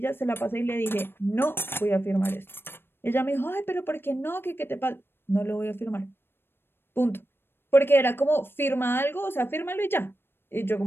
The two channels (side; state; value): right; late; 0.10 ms